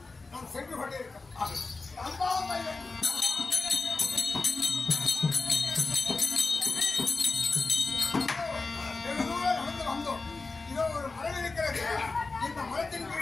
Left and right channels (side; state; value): right; quieter; 3.8 dB